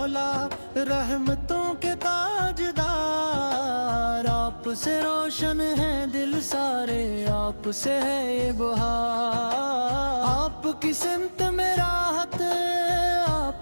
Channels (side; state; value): both; inverted; correlation -1.00